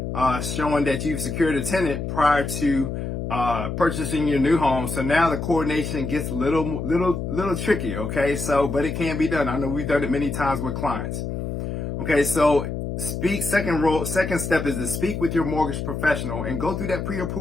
showing that you've secured a tenant prior to purchasing your new home. So now the coordination gets a little tricky. Okay, so but it can be done. I know we've done it many times with clients. Okay, so second step is to speak with your mortgage professional and go through that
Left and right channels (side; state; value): left; noise; hum, 4 dB below the sound